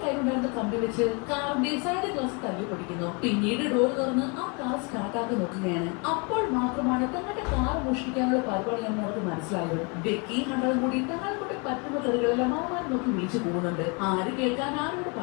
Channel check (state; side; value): quieter; right; 31.5 dB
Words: കയ്യിലുണ്ടായിരുന്ന കമ്പി വെച്ച് കാറിന്റെ സൈഡ് ഗ്ലാസ് തല്ലി പൊടിക്കുന്നു. പിന്നീട് ഡോർ തുറന്ന് ആ കാർ സ്റ്റാർട്ടാക്കി നോക്കുകയാണ്. അപ്പോൾ മാത്രമാണ് തങ്ങളുടെ കാർ മോഷ്ടിക്കാനുള്ള പരിപാടിയാണെന്ന് അവർക്ക് മനസ്സിലായത്. ബെക്കി ഹണ്ടറും കൂടി തങ്ങളെ കൊണ്ട് പറ്റുന്ന തെറികളെല്ലാം അവന്മാർ നോക്കി വിളിച്ചു പോകുന്നുണ്ട്. ആര് കേൾക്കാൻ, ആരോട്